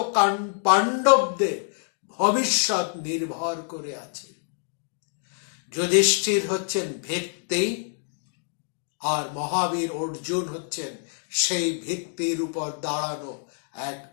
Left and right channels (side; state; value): right; silent; 61 dB below the other